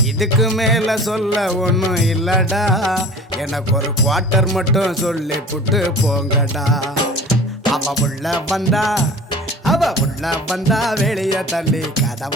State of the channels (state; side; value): normal; both; correlation 0.42